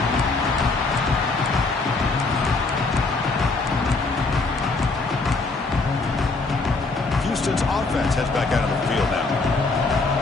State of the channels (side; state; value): right; quieter; 3.7 dB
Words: 8. Houston's offense heads back out on the field now.